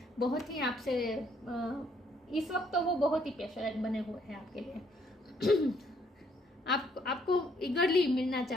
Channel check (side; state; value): both; normal; correlation 0.68